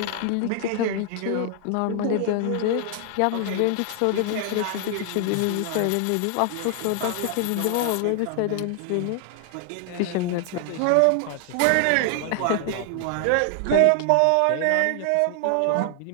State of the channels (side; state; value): both; different; correlation 0.00